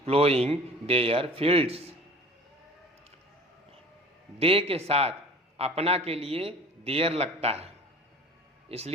ploughing their fields. They के साथ अपना के लिए देयर लगता है,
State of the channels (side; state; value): both; normal; correlation 0.44